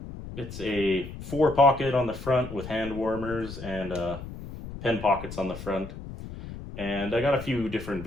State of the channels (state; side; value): noise; left; rumble, 11 dB below the sound